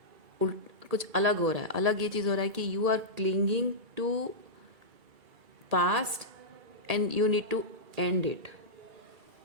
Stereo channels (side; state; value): left; late; 1.8 ms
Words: कुछ अलग हो रहा है। अलग ये चीज़ हो रहा है कि you are clinging to past and you need to end it.